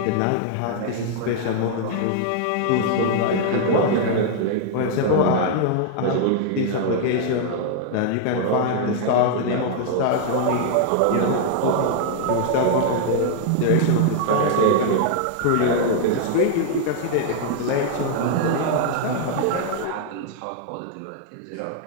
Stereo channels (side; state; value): both; different; correlation 0.00